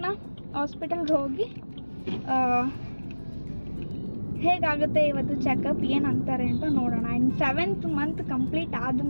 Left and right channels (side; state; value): both; inverted; correlation -1.00